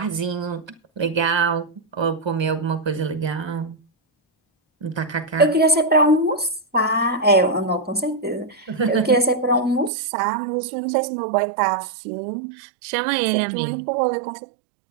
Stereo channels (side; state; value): left; drops out; at 9.9 s